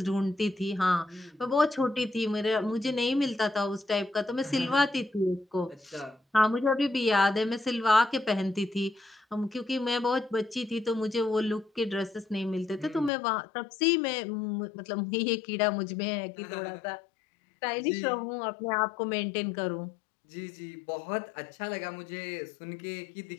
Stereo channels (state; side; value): drops out; right; at 13.1 s